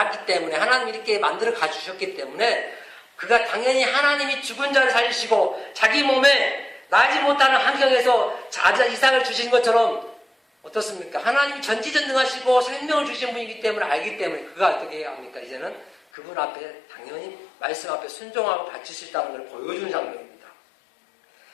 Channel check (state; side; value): drops out; right; at 16.0 s